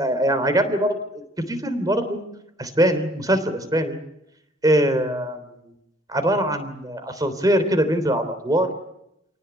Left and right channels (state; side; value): normal; both; correlation 0.59